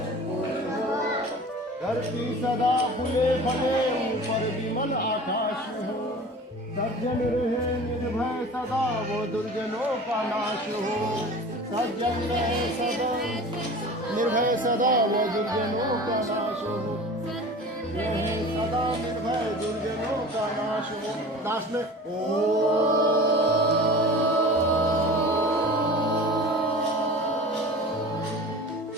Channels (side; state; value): both; normal; correlation 0.38